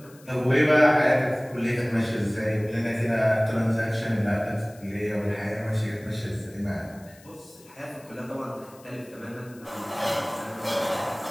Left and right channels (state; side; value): noise; left; hiss, 25 dB below the sound